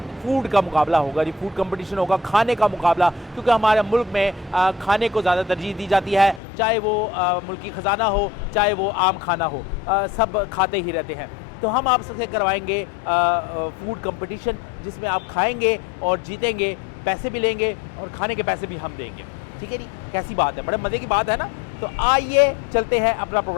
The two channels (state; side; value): drops out; right; at 6.4 s